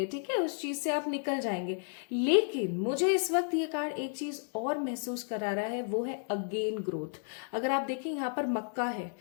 ठीक है, उस चीज से आप निकल जाएंगे। लेकिन मुझे इस वक्त ये कार्ड एक चीज और महसूस करा रहा है, वो है अगेन ग्रोथ। अगर आप देखें यहाँ पर मक्का है,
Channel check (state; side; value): silent; right; 56 dB below the other